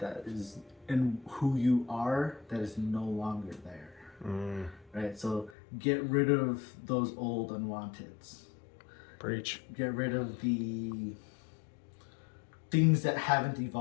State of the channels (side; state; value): right; drops out; at 5.6 s